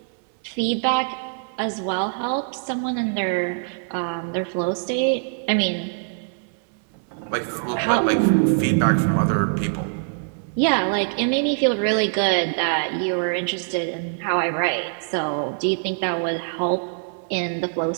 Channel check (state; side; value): silent; left; digital silence